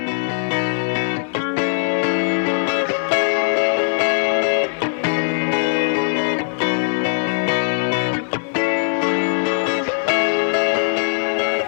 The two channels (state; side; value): silent; right; digital silence